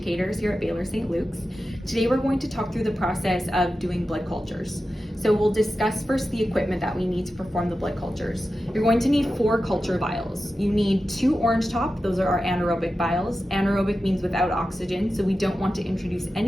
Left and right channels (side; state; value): both; normal; correlation 0.92